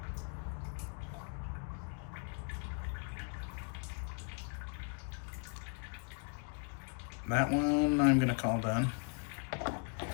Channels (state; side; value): quieter; right; 39.5 dB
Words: That one I'm gonna call done